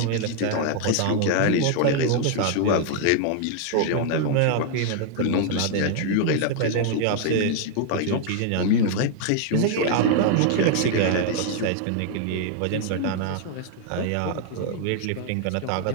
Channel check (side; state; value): both; different; correlation 0.00